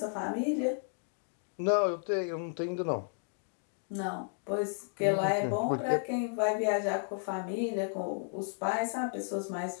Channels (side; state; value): right; silent; digital silence